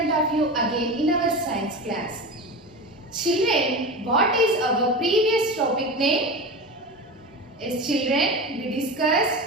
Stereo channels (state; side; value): normal; both; correlation 0.26